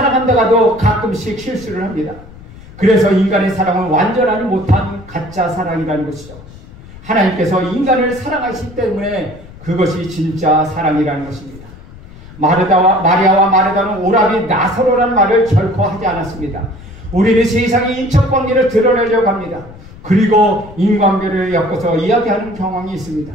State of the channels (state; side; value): noise; left; rumble, 19 dB below the sound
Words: 가끔씩 실수를 합니다. 그래서 인간의 사랑은 완전하지 못한 가짜 사랑이라는 것이죠. 하나님께서 인간을 사랑하시기 때문에 그것이 진짜 사랑이라는 것입니다. 마리아와 마르다는 오라비 나사로라는 말을 결코 하지 않았습니다. 우리는 세상의 인척관계를 드러내려고 합니다. 그리고 인관계를 엮어서 이야기하는 경향이 있습니다.